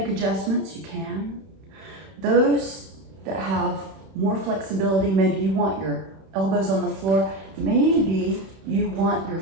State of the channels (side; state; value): left; late; 31 ms